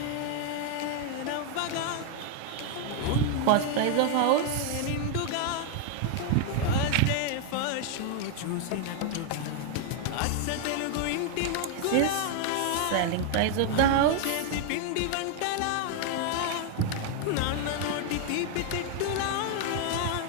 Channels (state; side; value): different; both; correlation 0.00